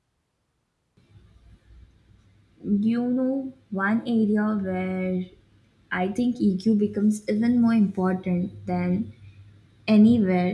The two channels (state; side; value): identical; both; correlation 1.00